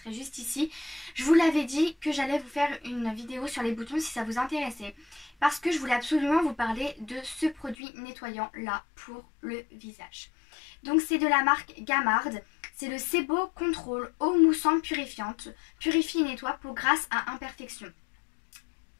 juste ici, je vous l'avais dit que j'allais vous faire une vidéo sur les boutons si ça vous intéressait. Parce que je voulais absolument vous parler de ce produit nettoyant là pour le visage. Donc c'est de la marque Gamard. C'est le Sebo Control eau moussante purifiante. Purifie et nettoie peau grasse à imperfection.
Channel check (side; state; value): right; drops out; at 7.8 s